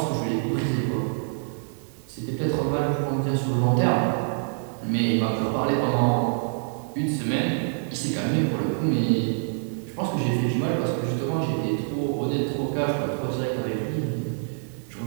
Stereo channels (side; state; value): left; silent; 61 dB below the other